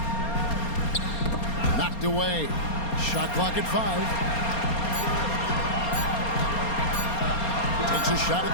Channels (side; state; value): right; late; 4.3 ms